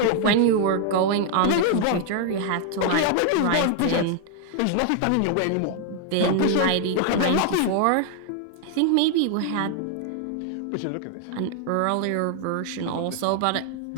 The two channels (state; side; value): different; both; correlation 0.00